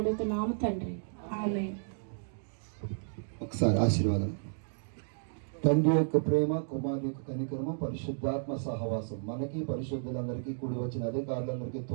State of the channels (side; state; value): left; silent; digital silence